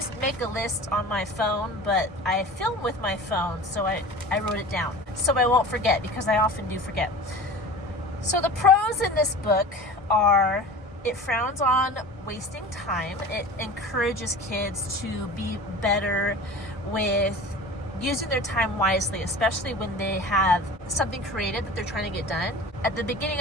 make a list on my phone, but I film with my phone, so I wrote it down so I won't forget because I often do forget. So the pros in this book are it frowns on wasting time. It encourages kids to be better with using their time wisely, especially when they have something creative that they're trying to get done. At the beginning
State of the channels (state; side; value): normal; both; correlation 0.38